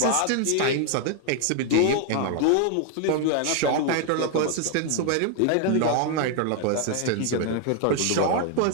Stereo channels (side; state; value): both; different; correlation 0.00